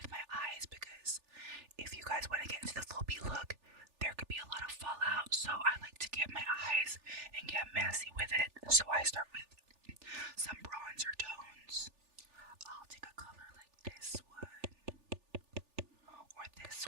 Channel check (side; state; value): left; late; 3.4 ms